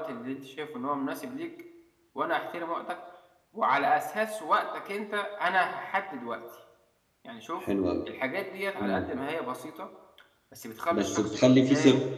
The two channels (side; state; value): both; identical; correlation 1.00